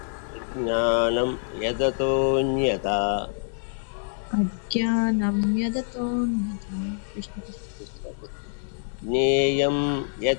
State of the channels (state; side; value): silent; right; 59 dB below the other